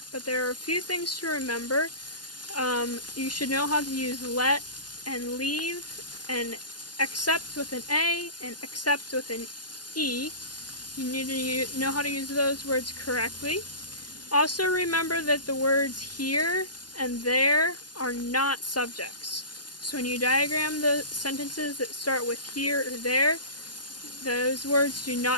but there are a few things to remember. You should know how to use let and leave and accept with an A and accept with an E. You need to know how to use those words correctly. Also remember that the words here and there are not subjects. So when you diagram the sentences that start with here or there, those words do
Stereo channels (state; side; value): late; right; 0.70 ms